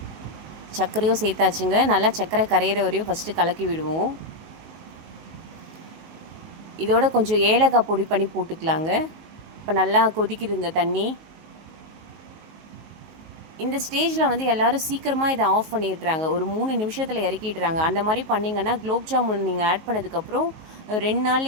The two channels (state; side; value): late; left; 19 ms